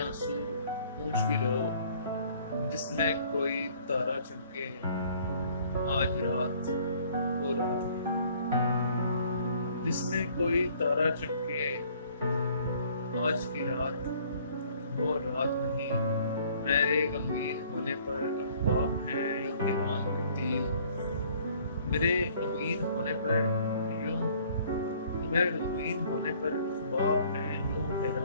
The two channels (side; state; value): both; inverted; correlation -0.58